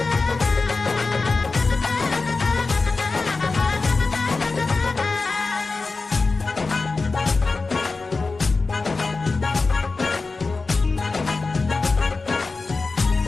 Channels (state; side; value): quieter; right; 3.9 dB